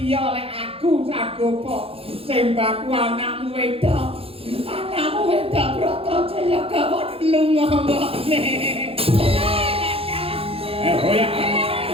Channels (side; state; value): left; late; 0.27 ms